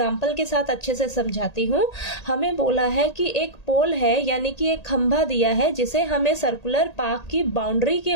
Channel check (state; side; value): late; right; 1.8 ms